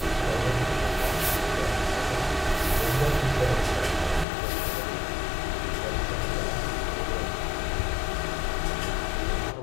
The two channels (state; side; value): drops out; right; at 4.2 s